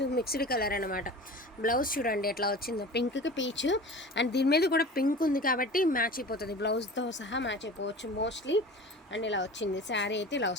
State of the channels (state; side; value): normal; both; correlation 0.38